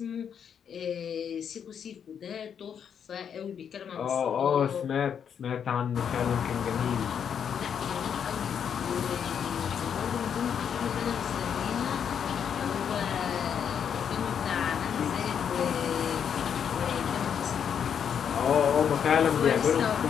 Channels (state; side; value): quieter; right; 7.9 dB